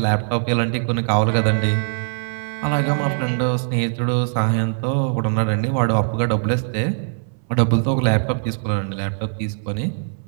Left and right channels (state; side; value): silent; left; 60 dB below the other